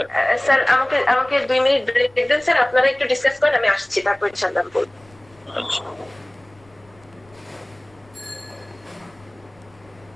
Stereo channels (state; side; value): noise; left; rumble, 29 dB below the sound